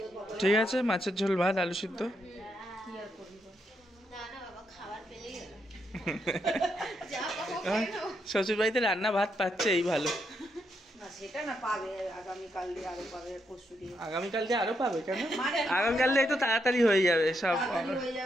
ঠিক আছে, মাছের ঝোল ভাত আলু সিদ্ধ। না না বাবা, খাবার পেলেই হলো। যা পাবো খেয়ে নেবো। শ্বশুর বাড়িতে রান্না ভাত পাচ্ছে, এই ভালো। না সেটা না, পাবে আগামীকাল দিয়ে আরো পাবে, পরশু দিয়ে। আগামীকাল দিয়ে আরো পাবে কেন? মানে আগামীকাল দিয়ে তো তাড়াতাড়ি হয়ে যাবে, সব তাড়াতাড়ি হয়ে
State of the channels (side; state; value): both; normal; correlation 0.80